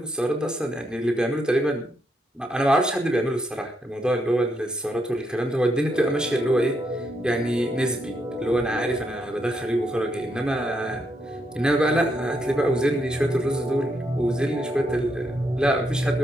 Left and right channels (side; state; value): both; normal; correlation 0.79